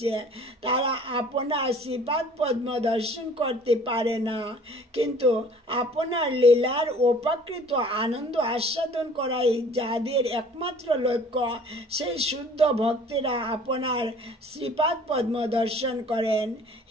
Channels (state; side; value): normal; both; correlation 0.51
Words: তারা আপনার শ্রীপাদ পদ্ম দর্শন করতে পারে না, কিন্তু আপনার লীলার অপ্রাকৃত আনন্দ আস্বাদন করাই যাদের একমাত্র লক্ষ্য, সেই শুদ্ধ ভক্তেরা আপনার শ্রীপাদ পদ্ম দর্শন করেন।